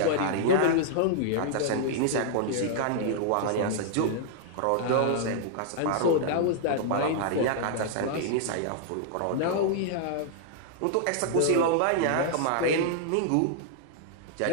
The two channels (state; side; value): different; both; correlation -0.01